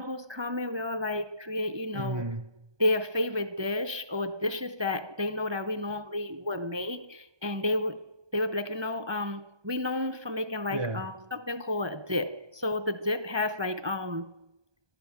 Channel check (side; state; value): left; late; 1.2 ms